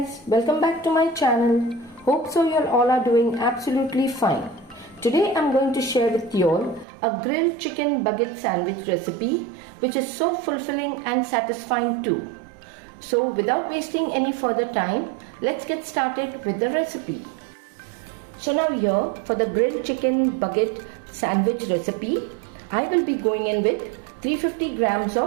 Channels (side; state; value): left; drops out; at 6.9 s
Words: welcome back to my channel. Hope so you all are doing absolutely fine. Today I'm going to share with you all a grilled chicken baguette sandwich recipe which is so fulfilling and satisfying too. So without wasting any further time, let's get started with the recipe. So now here for the grilled chicken baguette sandwich recipe, I will be going in with 350 grams